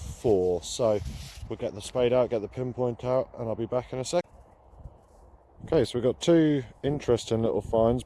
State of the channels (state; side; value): identical; both; correlation 1.00